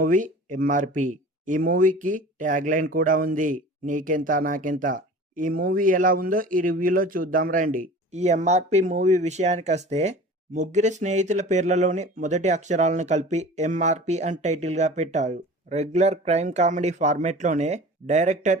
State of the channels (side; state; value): both; normal; correlation 0.40